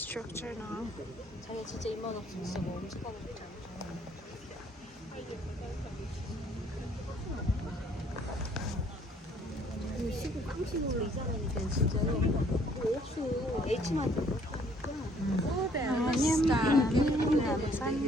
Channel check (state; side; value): normal; both; correlation 0.62